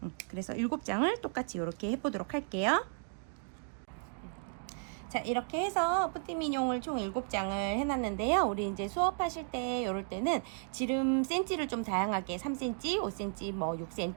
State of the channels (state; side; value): silent; left; 55 dB below the other